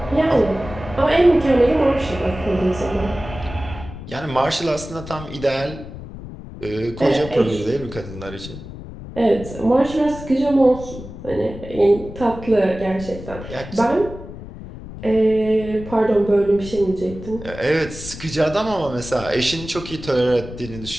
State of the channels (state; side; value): noise; left; rumble, 13 dB below the sound